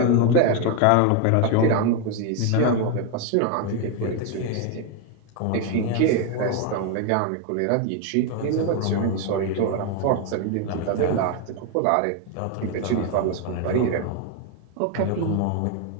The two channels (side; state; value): both; different; correlation 0.01